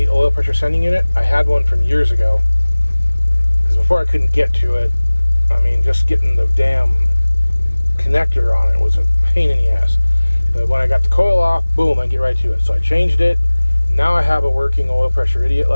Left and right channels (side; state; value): both; inverted; correlation -1.00